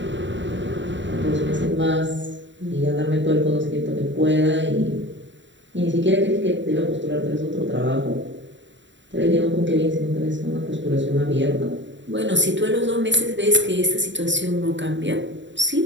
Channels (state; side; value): late; left; 0.54 ms